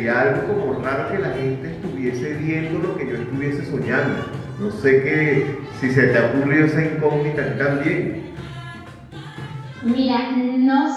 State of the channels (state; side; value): identical; both; correlation 1.00